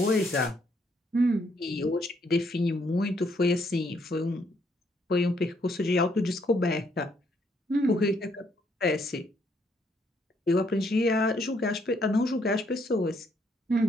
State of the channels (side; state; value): both; normal; correlation 0.71